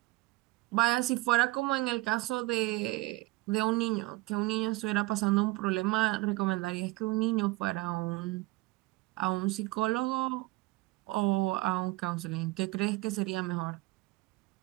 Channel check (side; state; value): left; quieter; 21.0 dB